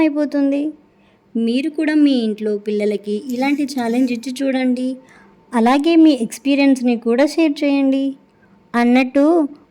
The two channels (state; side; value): identical; both; correlation 1.00